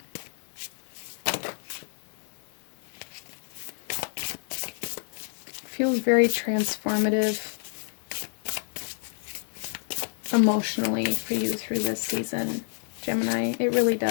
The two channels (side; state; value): right; silent; 57 dB below the other